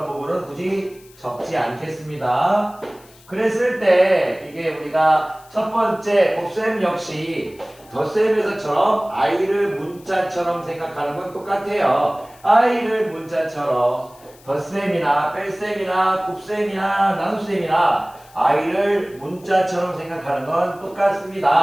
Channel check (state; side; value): noise; left; hiss, 26 dB below the sound